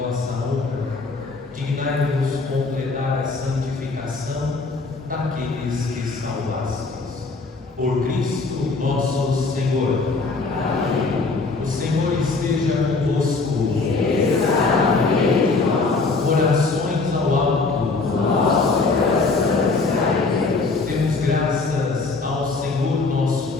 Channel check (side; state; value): right; quieter; 3.9 dB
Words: honra, dignai-vos completar a santificação daqueles que salvastes. Por Cristo nosso Senhor. Amém. O Senhor esteja convosco. Orações ao alto. Nosso coração está em Deus. Demos graças ao Senhor nosso